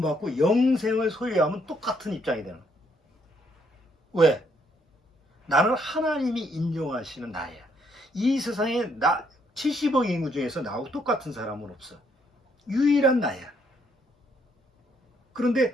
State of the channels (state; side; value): normal; both; correlation 0.71